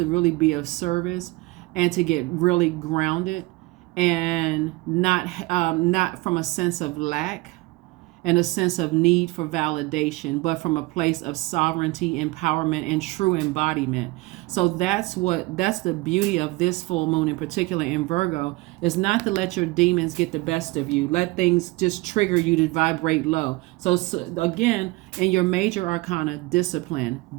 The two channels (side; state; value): left; quieter; 22.5 dB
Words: really be of service and to get really grounded and not from a sense of lack and a sense of need for validation, but from a place of sovereignty, empowerment, and true embodiment. So that's the beauty of this full moon in particular in Virgo, is not to let your demons get the best of you. Let things just trigger you to vibrate low. So again, in your major arcana, discipline,